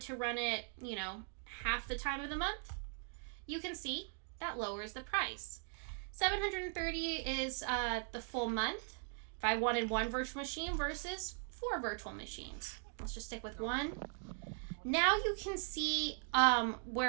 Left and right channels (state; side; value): silent; left; 51 dB below the other